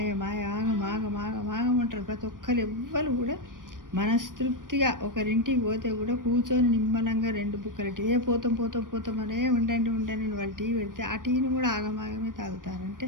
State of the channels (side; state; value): left; late; 0.90 ms